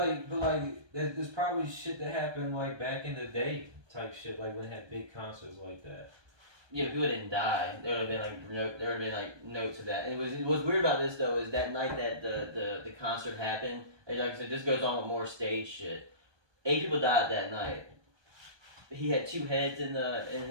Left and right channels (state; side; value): late; left; 1.2 ms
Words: But like, there's probably shit that happened like back in the day, type shit, like when they had big concerts like that. Yeah, people didn't die. There would have been like notes of that. And what's weird about this though is that night that the concert happened. Like I said, this goes on with more stage shit. 8 people died that night. He had 2 heads in